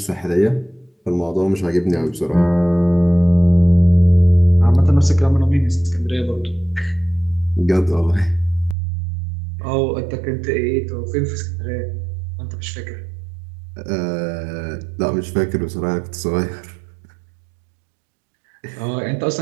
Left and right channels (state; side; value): drops out; left; at 8.8 s